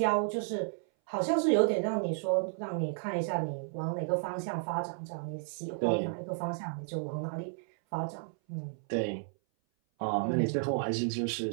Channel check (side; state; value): left; silent; 56 dB below the other